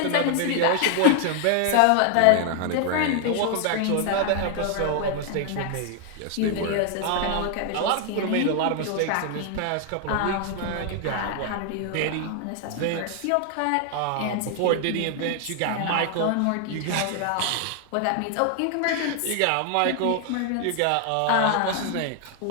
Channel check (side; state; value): both; different; correlation 0.00